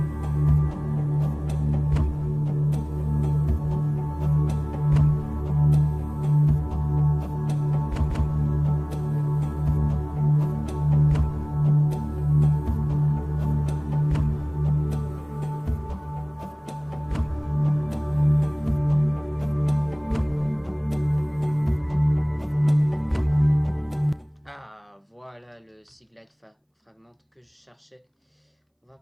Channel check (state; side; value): identical; both; correlation 1.00